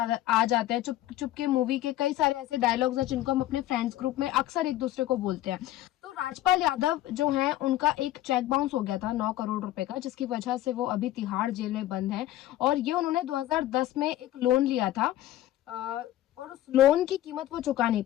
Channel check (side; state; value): right; quieter; 14.2 dB